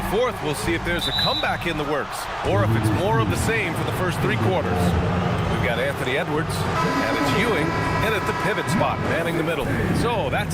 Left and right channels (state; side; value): identical; both; correlation 1.00